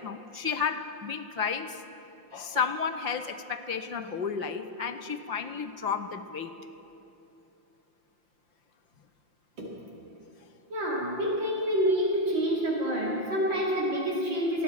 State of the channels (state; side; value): late; left; 5.7 ms